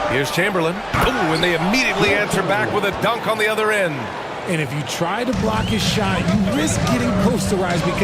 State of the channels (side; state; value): both; identical; correlation 1.00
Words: Here's Chamberlain. Ooh, and they immediately answer back with a dunk on the other end. And if you try to block his shot, you risk getting posterized